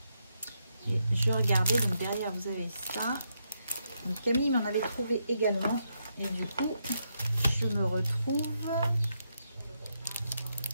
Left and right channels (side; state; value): both; inverted; correlation -0.80